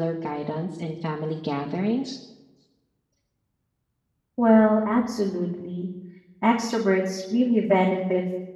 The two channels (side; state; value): both; identical; correlation 1.00